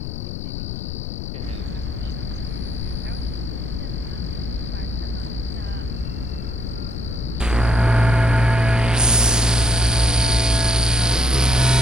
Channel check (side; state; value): left; noise; rumble, 6 dB below the sound